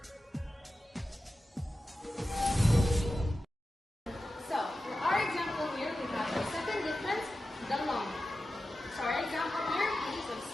So, for our example here, we have the second difference, the long. So, our example here is of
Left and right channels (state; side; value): normal; both; correlation 0.93